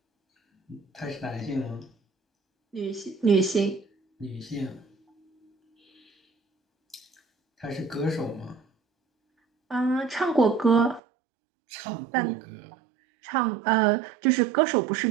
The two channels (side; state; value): left; drops out; at 11.0 s